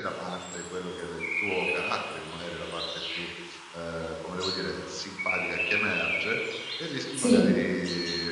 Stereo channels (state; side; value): identical; both; correlation 1.00